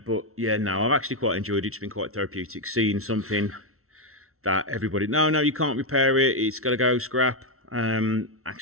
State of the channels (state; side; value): late; left; 0.63 ms